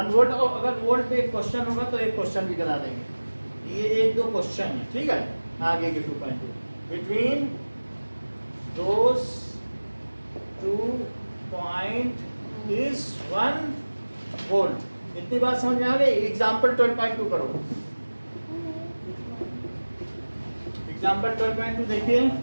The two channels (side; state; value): both; inverted; correlation -1.00